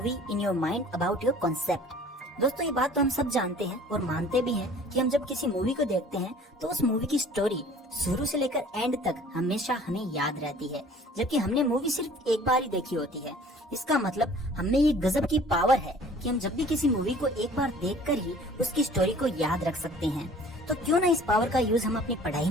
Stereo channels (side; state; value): both; normal; correlation 0.50